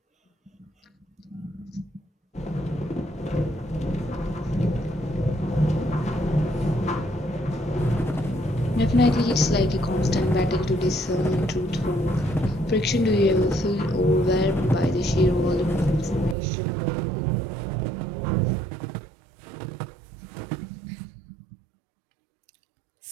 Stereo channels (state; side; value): drops out; left; at 16.4 s